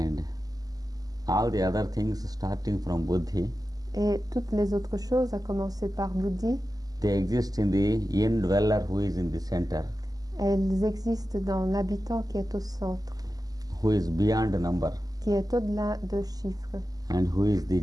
all the other things starting from buddhi. Et toutes les autres choses, à commencer par Buddhi, They exist in the indweller who is in the center, elles existent dans l'habitant qui est au centre, who is beyond number, qui est au-delà de chiffres and who is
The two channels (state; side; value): late; left; 0.18 ms